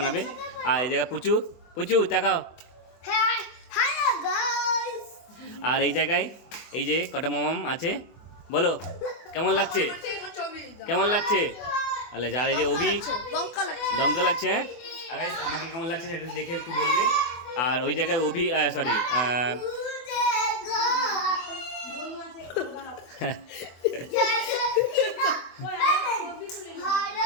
আর এই জায়গায় পুচু পুচু তাকাও। আর এই জায়গায় এই যে কটা মামাম আছে, বলো কেমন লাগছে, কেমন লাগছে। আলে যার এই যে অভি, দমকা লাগছে। হ্যাঁ, আর আমাকে কেমন লাগছে সেটা দেখে একটু বলবে। আর ওই জায়গায় অভি, সরি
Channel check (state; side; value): late; right; 24 ms